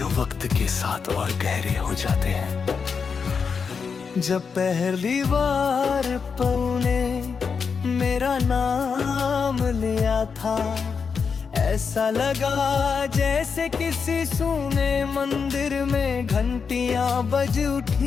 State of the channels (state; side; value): quieter; right; 5.8 dB